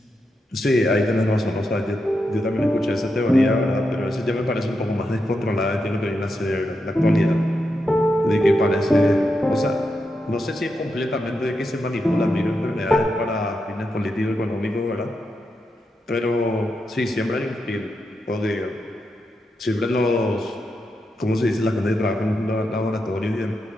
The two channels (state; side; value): normal; both; correlation 0.86